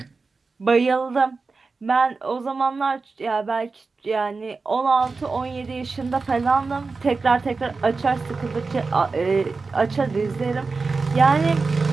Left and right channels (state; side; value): quieter; left; 4.2 dB